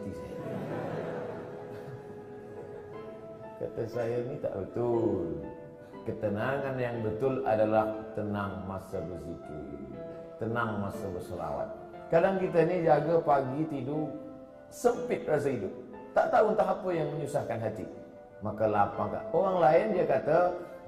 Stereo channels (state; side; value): identical; both; correlation 1.00